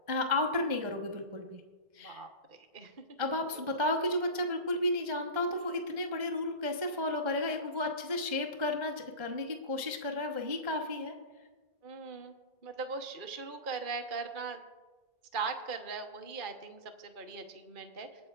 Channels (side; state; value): left; late; 1.3 ms